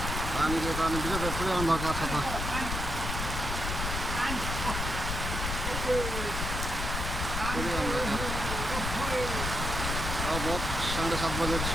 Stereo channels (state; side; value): noise; left; rumble, 3 dB below the sound